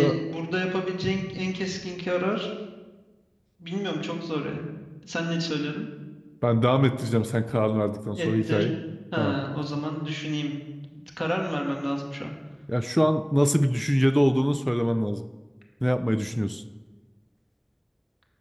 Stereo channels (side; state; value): both; identical; correlation 1.00